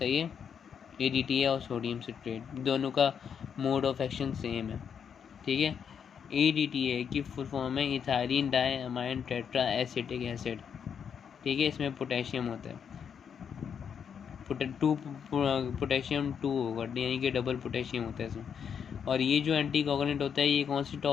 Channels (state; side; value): quieter; right; 7.4 dB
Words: है, EDTA और सोडियम सिट्रेट दोनों का मोड ऑफ एक्शन सेम है। ठीक है, EDTA की फुल फॉर्म है ethylene diamine tetra acetic acid. ठीक है, इसमें पोटेशियम होता है, पोटेशियम 2 होगा, यानी कि डबल पोटेशियम होता है इसमें। और ये जो एंटी कोगुलेंट होता है ये कौन सी